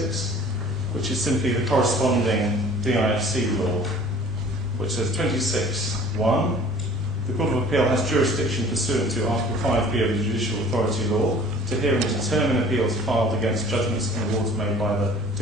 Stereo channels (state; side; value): normal; both; correlation 0.48